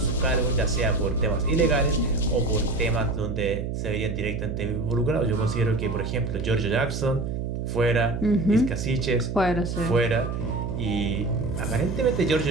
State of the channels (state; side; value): noise; right; hum, 3 dB below the sound